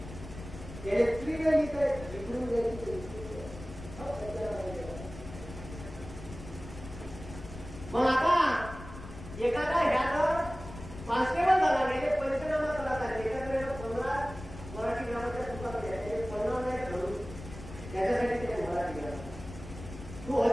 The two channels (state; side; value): noise; left; rumble, 13 dB below the sound